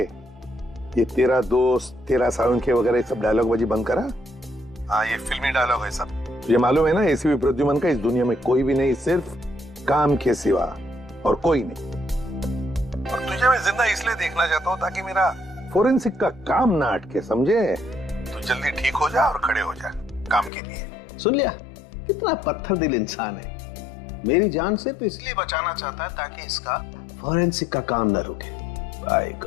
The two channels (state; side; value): drops out; right; at 20.5 s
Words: ये तेरा दोस्त, तेरा सालुंखे वगैरह सब डायलॉग बाजी बंद करा। हाँ, ये फिल्मी डायलॉग है सब। ये मालूम है ना, एसीपी प्रद्युमन का इस दुनिया में कोई भी नहीं, सिर्फ काम के सिवा और कोई नहीं। और तुझे मैं जिंदा इसलिए देखना चाहता हूँ ताकि मेरा फोरेंसिक का काम ना अटके, समझे? तू जल्दी ठीक हो जा और खड़े हो जा काम के लिए। सुन लिया, कितना पत्थर दिल इंसान है। मेरी जान सिर्फ इसलिए बचाना चाहता है ताकि इसका फोरेंसिक का काम न रुके। By